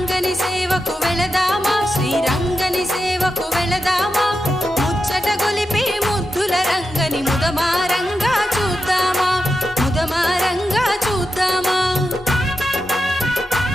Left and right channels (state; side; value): normal; both; correlation 0.89